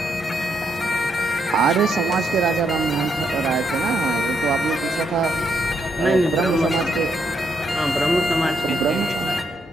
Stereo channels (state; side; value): normal; both; correlation 0.77